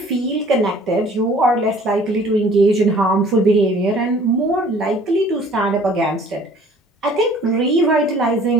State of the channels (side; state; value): both; normal; correlation 0.53